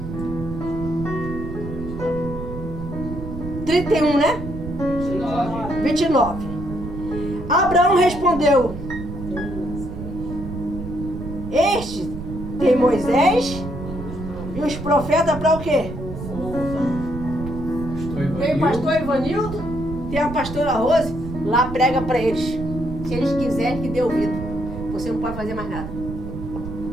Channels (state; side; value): noise; right; rumble, 8 dB below the sound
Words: 31, né? 29. Abraão respondeu: Este tem Moisés e os profetas para o quê? Tem o pastor Ivanildo, tem a pastora Rose, lá prega para eles. Se eles quiserem que dê ouvido. Você não pode fazer mais nada.